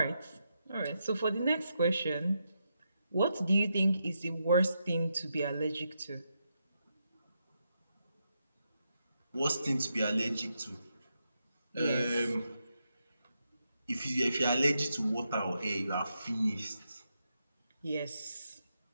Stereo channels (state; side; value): inverted; both; correlation -0.84